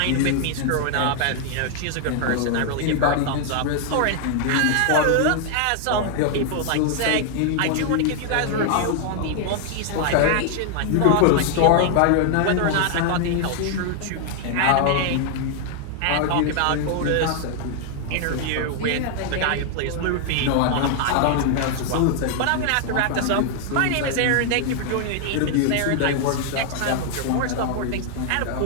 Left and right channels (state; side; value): different; both; correlation 0.00